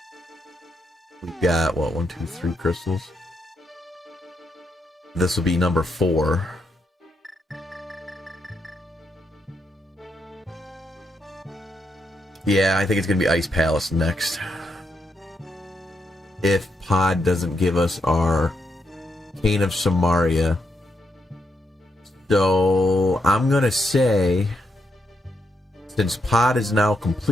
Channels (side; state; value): both; normal; correlation 0.80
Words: We've got, what, 1, 2, 3 crystals? This will be number 4. Yeah, I think it's going to be Ice Palace next. If Pod doesn't give us our Cane of Samaria. So, I'm going to say, since Pod is now